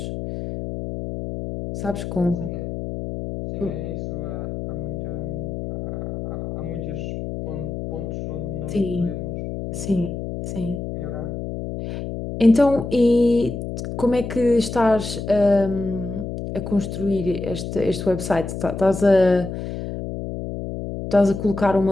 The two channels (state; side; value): noise; left; hum, 6 dB below the sound